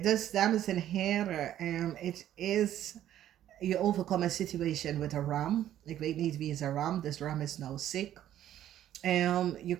dus dames en heren, it is, je overkomt een situation with a ram. Ik weet niet wie is een ram. This ram is now sick. You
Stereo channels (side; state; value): left; quieter; 11.8 dB